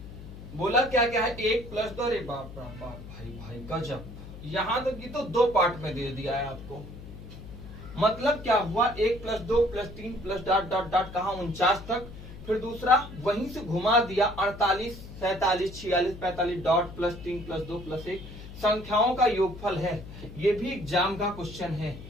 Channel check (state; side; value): noise; left; hum, 14 dB below the sound